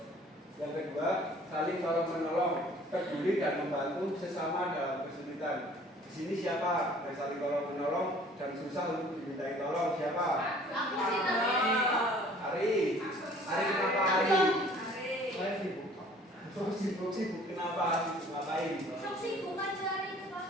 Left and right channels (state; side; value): normal; both; correlation 0.53